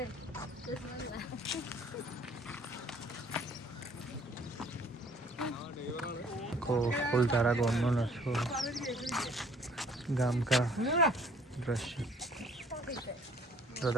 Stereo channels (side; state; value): both; normal; correlation 0.57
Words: ફૂલધારા ગામનો નશો ગામ કા દ્રશ્ય. તો